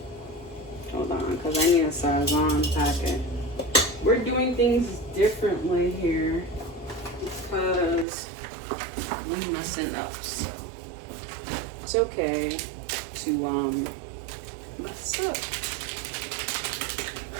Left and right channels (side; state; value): left; drops out; at 8.1 s